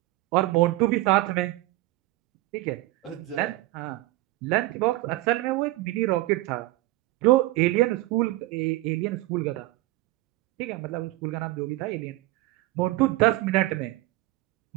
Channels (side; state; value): left; quieter; 18.4 dB